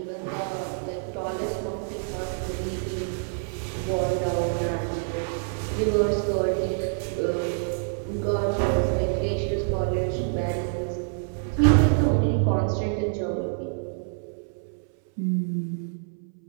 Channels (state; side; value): silent; left; 60 dB below the other